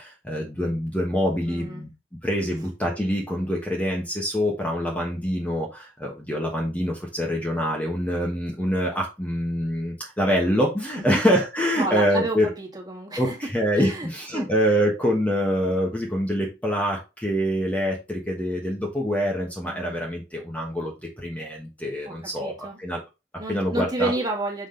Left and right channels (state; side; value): normal; both; correlation 0.66